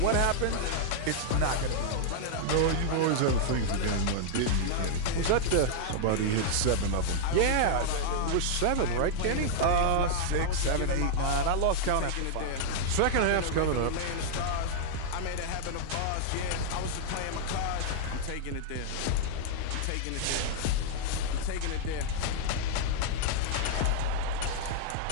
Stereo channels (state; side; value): different; both; correlation -0.01